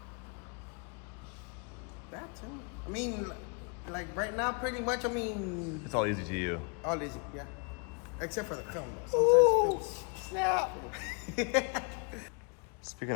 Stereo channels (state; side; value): quieter; right; 37.2 dB